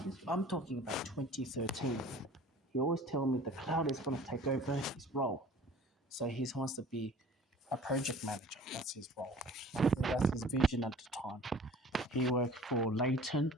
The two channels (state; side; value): normal; both; correlation 0.47